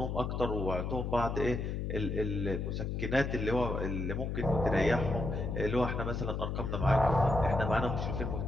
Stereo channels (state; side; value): noise; left; hum, 2 dB below the sound